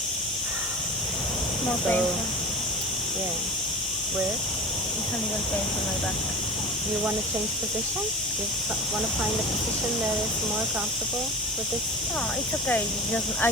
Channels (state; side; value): normal; both; correlation 0.31